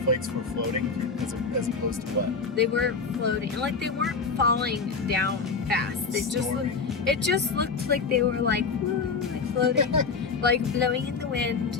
were floating as opposed to what? They were floating, like they weren't falling down fast. It just looked like they were like, woo, like floating, like blowing in the wind.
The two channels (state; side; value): quieter; right; 4.8 dB